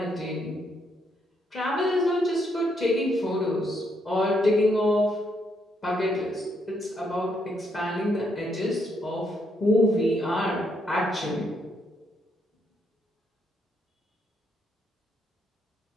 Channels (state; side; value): normal; both; correlation 0.75